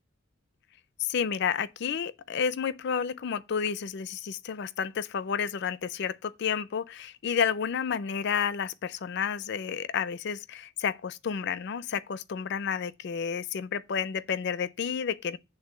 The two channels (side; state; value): right; quieter; 6.7 dB